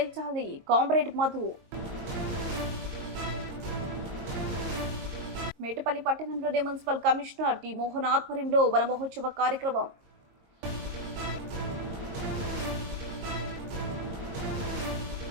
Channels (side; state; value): left; late; 22 ms